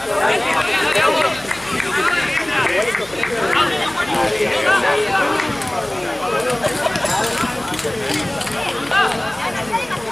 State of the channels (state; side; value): noise; left; hum, 23 dB below the sound